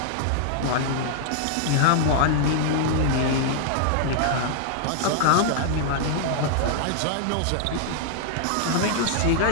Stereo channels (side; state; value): both; different; correlation -0.01